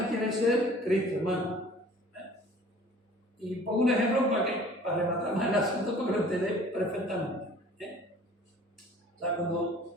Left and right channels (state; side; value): normal; both; correlation 0.49